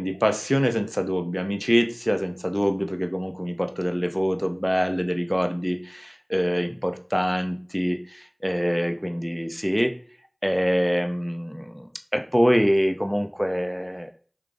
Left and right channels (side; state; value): both; identical; correlation 1.00